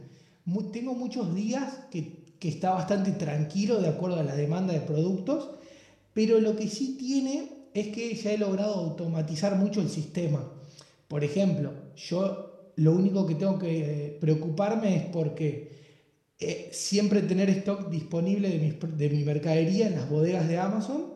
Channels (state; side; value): identical; both; correlation 1.00